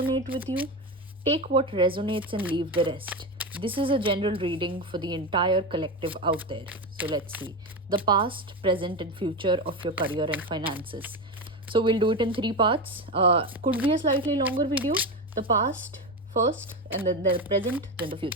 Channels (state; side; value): normal; both; correlation 0.18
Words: with you. Take what resonates and leave the rest. This is a general reading for the entire collective out there. So, let's see the past, present, and future of your career and finances. So we'll do it in three parts. Could be a slightly longer video. The past first, and then the present, then the